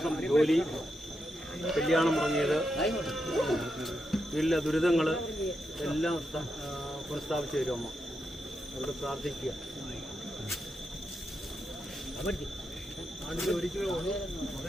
ജോലി, കല്യാണം മുടങ്ങിയത്, വീട്ടിലെ ദുരിതങ്ങൾ എല്ലാം പുനഃസ്ഥാപിച്ചു തരും അമ്മ. അവിടെ പ്രാർത്ഥിക്കുക. ആണ്ടിൽ ഒരിക്കലേ ഉള്ളൂ.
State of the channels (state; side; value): normal; both; correlation 0.85